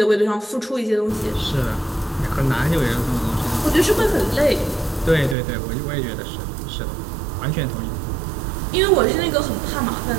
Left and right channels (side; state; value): left; drops out; at 5.4 s